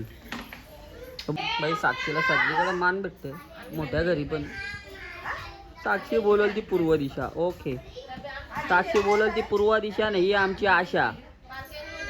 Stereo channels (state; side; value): identical; both; correlation 1.00